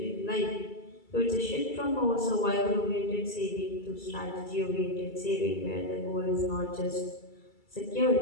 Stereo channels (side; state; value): right; late; 2.3 ms